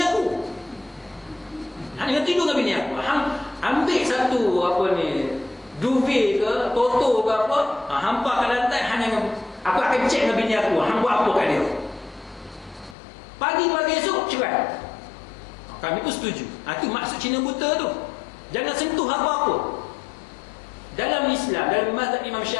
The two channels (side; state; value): right; drops out; at 13.0 s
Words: aku. Hang jangan tidur dengan bini aku. Hang ambil satu duvet ke, toto ke apa, hampa kat lantai, hang jangan, aku akan cek dengan bini aku, hang buat apa kat dia. Pagi-pagi esok cerai. Kami pun setuju. Itu maksud Cina buta tu. Jangan sentuh apa-apa. Dalam Islam, dalam mazhab Imam